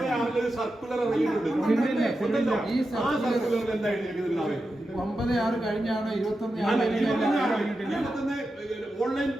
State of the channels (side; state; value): both; normal; correlation 0.90